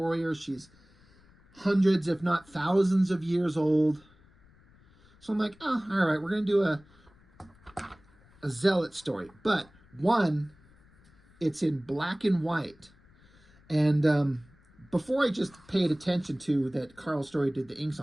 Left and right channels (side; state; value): left; noise; rumble, 29 dB below the sound